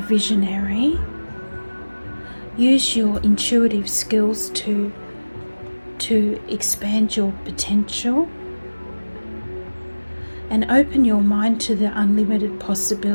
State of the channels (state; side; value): inverted; both; correlation -1.00